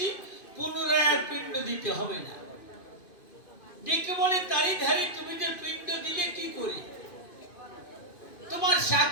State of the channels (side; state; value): right; late; 2.5 ms